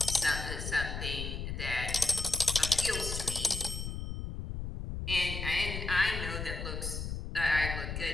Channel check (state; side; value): noise; left; rumble, 5 dB below the sound